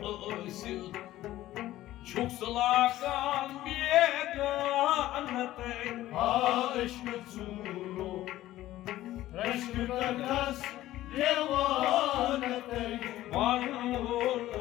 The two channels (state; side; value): quieter; right; 14.9 dB